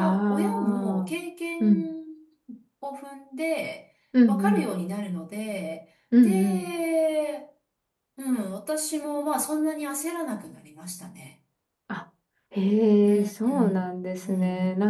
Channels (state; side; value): identical; both; correlation 1.00